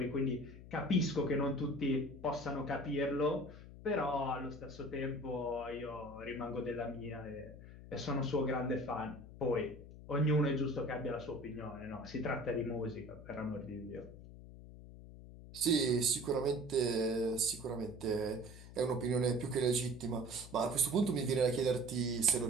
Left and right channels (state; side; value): noise; left; hum, 15 dB below the sound